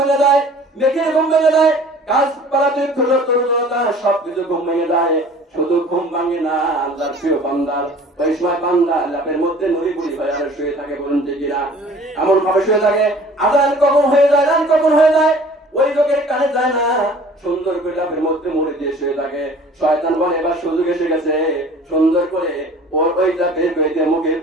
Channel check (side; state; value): both; normal; correlation 0.48